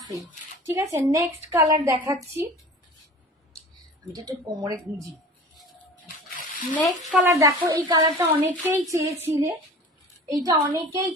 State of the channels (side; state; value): both; normal; correlation 0.40